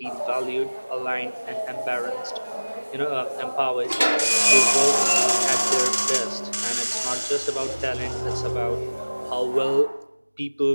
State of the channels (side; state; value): both; inverted; correlation -1.00